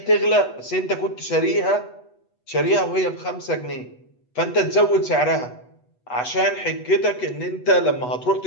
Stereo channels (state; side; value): late; right; 8.1 ms